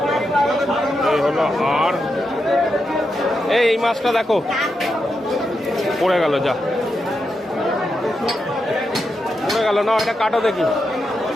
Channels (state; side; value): normal; both; correlation 0.86